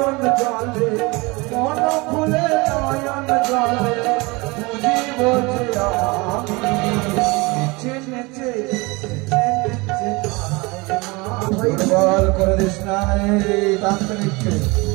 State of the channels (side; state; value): left; quieter; 25.3 dB